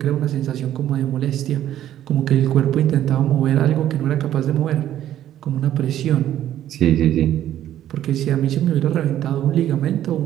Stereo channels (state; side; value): quieter; left; 11.9 dB